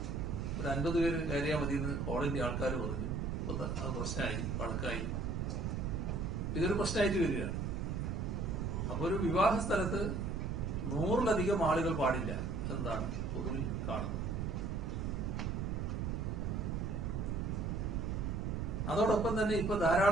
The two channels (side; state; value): right; noise; rumble, 1 dB below the sound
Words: ഒരു 50 പേര് കയറിയാൽ മതി എന്ന് ഹോളിന്റെ ആൾക്കാർ പറഞ്ഞു. അത് പ്രശ്നമായി, വഴക്കായി. ഇതൊരു പ്രശ്നമായിട്ട് വരികയാണ്. അപ്പൊ ഒരു വിവാഹ സ്ഥലത്ത് 100-ലധികം ആളുകൾ പാടില്ല എന്നാണ് പൊതുവിൽ കാണുന്നത്. അതോടൊപ്പം തന്നെ ഇപ്പൊ